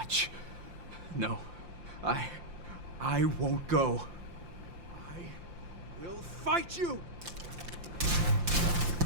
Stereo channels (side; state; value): left; late; 5.7 ms